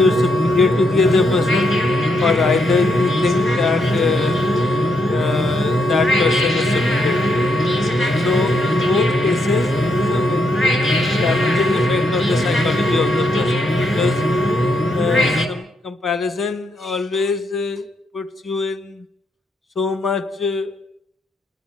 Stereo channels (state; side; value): normal; both; correlation 0.78